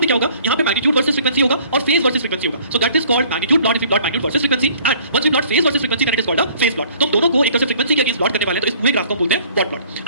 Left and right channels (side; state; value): both; inverted; correlation -0.55